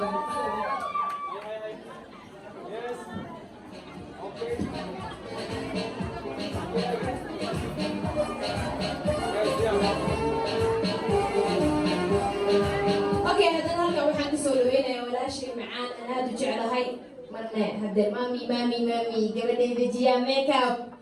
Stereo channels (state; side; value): identical; both; correlation 1.00